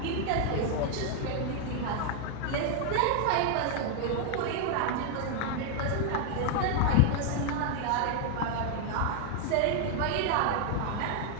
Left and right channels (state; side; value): different; both; correlation 0.00